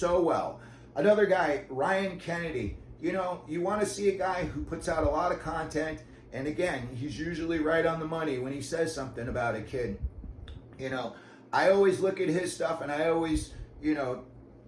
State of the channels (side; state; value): both; identical; correlation 1.00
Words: well. Another guy, Ryan Kennedy, you want to see a guy who puts out a lot of content, and again, he's usually right on the money when he says something about a kid. I always look at his stuff and I always,